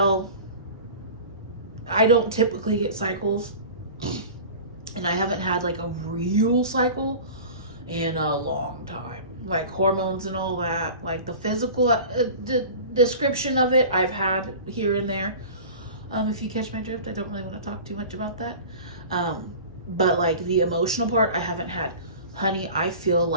I don't typically get cycles, and I haven't had like a real cycle in a long time. Like hormones and all that, like the physical description of it, I've had here and there. If you catch my drift, I don't really want to talk too much about that. But like the emotional part, I haven't had. Honey, I feel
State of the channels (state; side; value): inverted; both; correlation -0.38